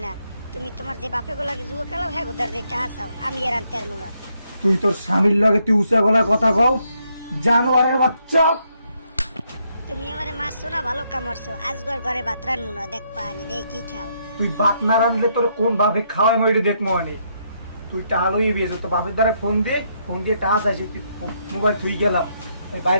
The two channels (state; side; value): inverted; both; correlation -0.75